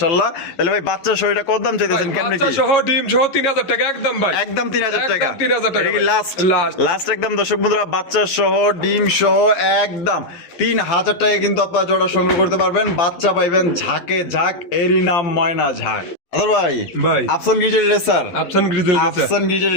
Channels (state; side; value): late; right; 11 ms